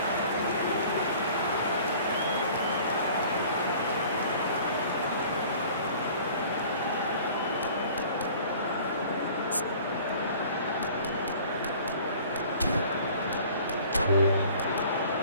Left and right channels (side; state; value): both; inverted; correlation -0.48